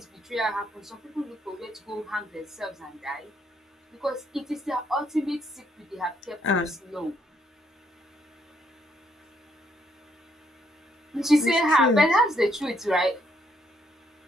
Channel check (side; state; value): both; normal; correlation 0.72